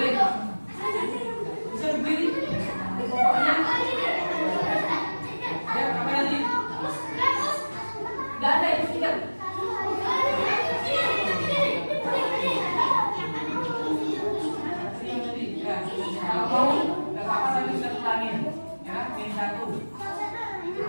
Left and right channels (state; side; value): inverted; both; correlation -1.00